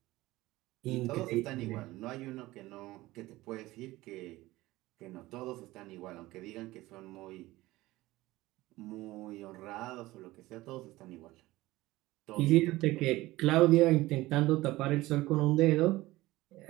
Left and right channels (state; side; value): quieter; left; 18.4 dB